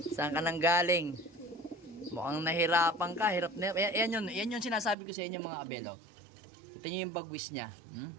Saan ka nang galing? Mukhang nahirapan ka. Hirap na. Yan yun sinasabi ko sa inyo mga kabelo. Kita nyo yung bagwis niya.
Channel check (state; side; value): drops out; left; at 5.0 s